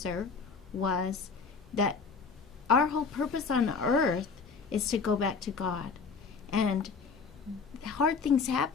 was that our whole purpose on earth is to go back to God. And hard things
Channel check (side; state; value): right; quieter; 5.1 dB